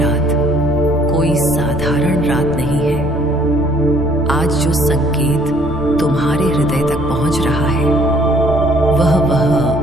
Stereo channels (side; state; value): left; noise; rumble, 10 dB below the sound